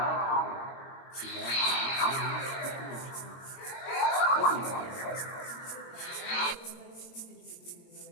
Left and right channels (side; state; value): right; late; 22 ms